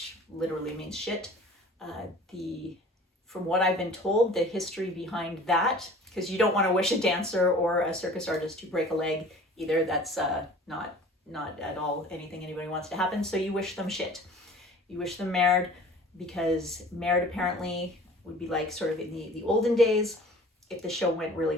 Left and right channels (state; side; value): normal; both; correlation 0.46